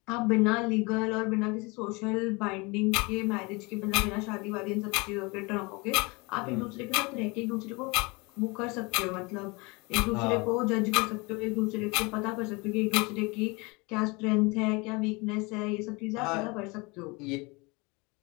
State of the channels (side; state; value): right; quieter; 26.7 dB